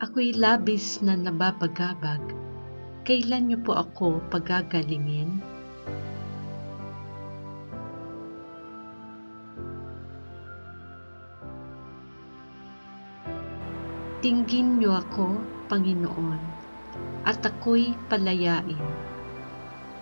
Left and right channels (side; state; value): both; inverted; correlation -1.00